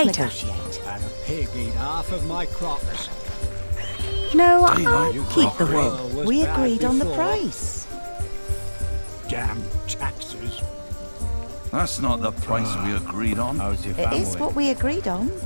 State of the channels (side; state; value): both; inverted; correlation -1.00